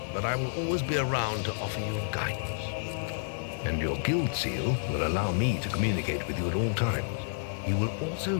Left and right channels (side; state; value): right; silent; digital silence